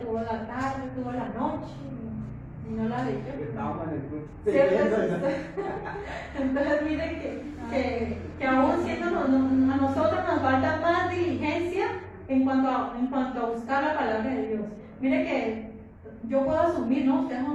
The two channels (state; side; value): identical; both; correlation 1.00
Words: la tarde, tuvo la noche, y no la leyó. Entonces, miren que aún siendo a nosotros nos falta más diligencia en cuanto a buscar la palabra de Dios. Miren que yo puedo asumir, ¿no? Ustedes